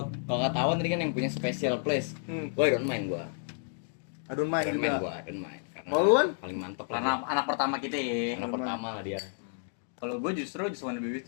ketahuan tadi kan yang punya special place. Gua don't mind gua. I Don't Mind Don't mind juga. gua, don't mind. Karena Kalau lu, Wan? paling mantep Karena lah. anak pertama kita ya. Anak pertama lah dia. Kalau gue justru Just Wanna Be With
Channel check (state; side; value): silent; right; digital silence